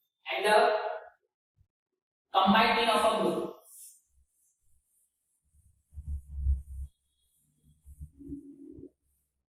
and the combined mean of a group।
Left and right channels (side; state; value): both; identical; correlation 1.00